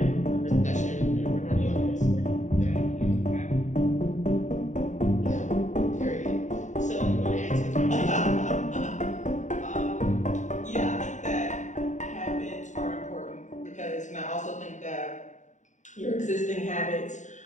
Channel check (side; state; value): right; late; 0.35 ms